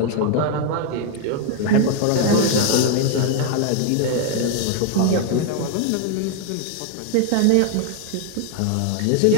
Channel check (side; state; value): both; different; correlation 0.00